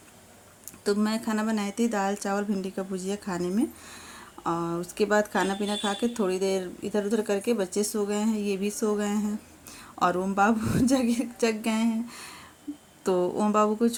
तो मैं खाना बनाई थी, दाल चावल भिंडी का भुजिया खाने में। और उसके बाद खाना पीना खा के थोड़ी देर इधर उधर करके बच्चे सो गए हैं, ये भी सो गए हैं और ओम बाबू जग गए हैं। तो ओम बाबू को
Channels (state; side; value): identical; both; correlation 1.00